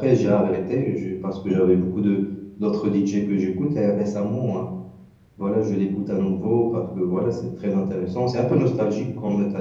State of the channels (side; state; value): both; identical; correlation 1.00